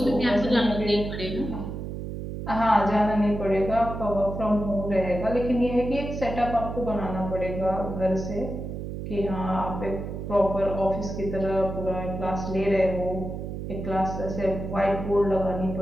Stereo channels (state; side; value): noise; right; hum, 6 dB below the sound